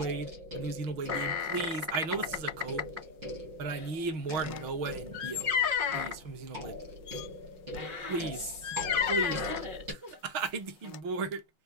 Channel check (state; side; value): late; left; 6.0 ms